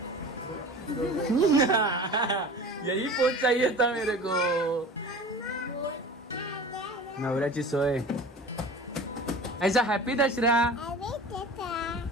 यही पोच चाहिए था मेरे को. नवऱ्याची सोय. ऐसा हॅपी दसरा.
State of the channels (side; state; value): both; normal; correlation 0.38